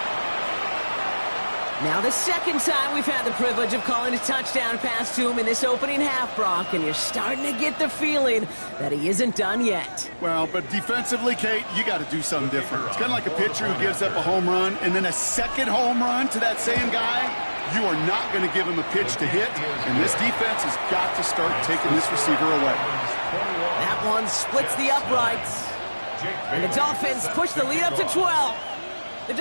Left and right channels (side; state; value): both; inverted; correlation -1.00